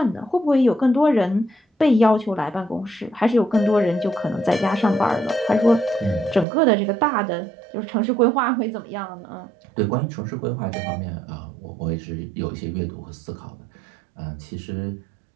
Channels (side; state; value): left; drops out; at 6.5 s